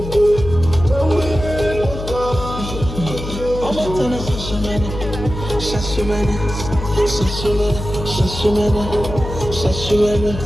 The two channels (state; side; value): noise; left; hum, 8 dB below the sound